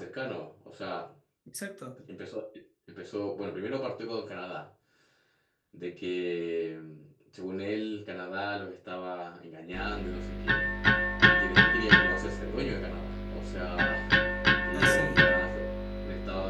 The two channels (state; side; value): identical; both; correlation 1.00